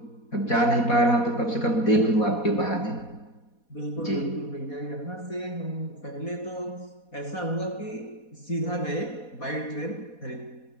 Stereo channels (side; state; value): right; late; 4.2 ms